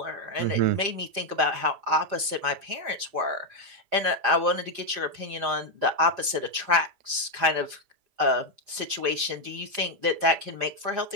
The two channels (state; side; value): late; left; 4.4 ms